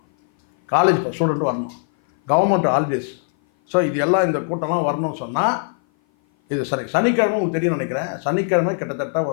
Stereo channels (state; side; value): silent; right; 57 dB below the other